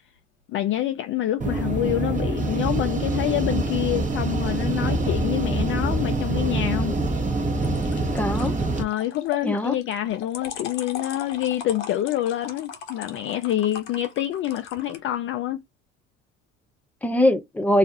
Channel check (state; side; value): quieter; right; 3.1 dB